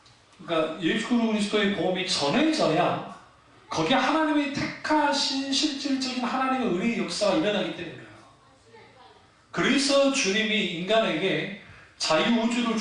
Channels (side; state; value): both; identical; correlation 1.00